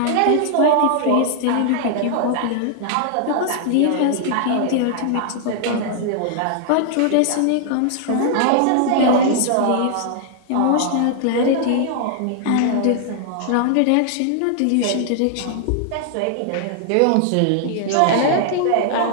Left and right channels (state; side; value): different; both; correlation 0.00